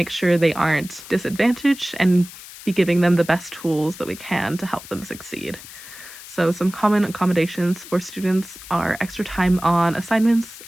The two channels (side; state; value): left; noise; hiss, 16 dB below the sound